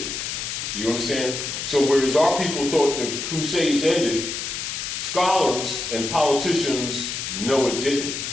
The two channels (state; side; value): noise; left; hiss, 4 dB below the sound